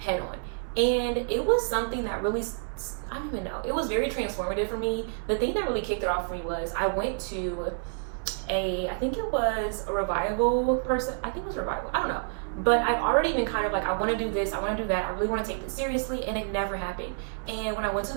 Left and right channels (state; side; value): silent; left; 59 dB below the other